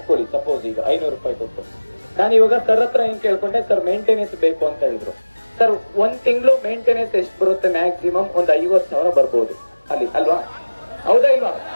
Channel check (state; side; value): inverted; both; correlation -1.00